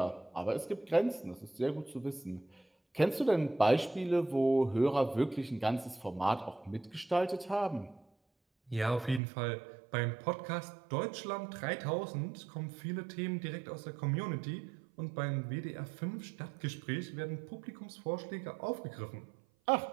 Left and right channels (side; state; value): left; drops out; at 9.2 s